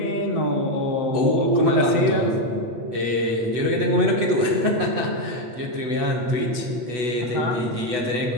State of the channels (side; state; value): left; late; 8.1 ms